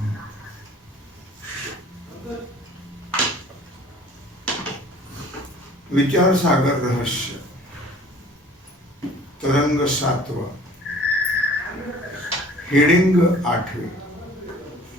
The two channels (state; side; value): normal; both; correlation 0.50